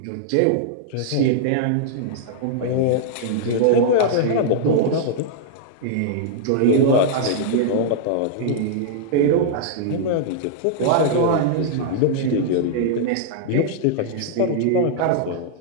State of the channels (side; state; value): both; different; correlation -0.01